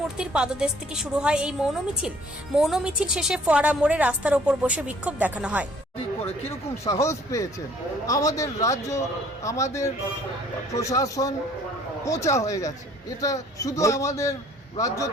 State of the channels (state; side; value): normal; both; correlation 0.57